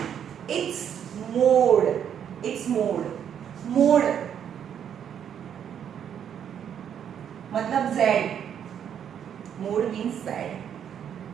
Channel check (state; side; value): quieter; left; 8.8 dB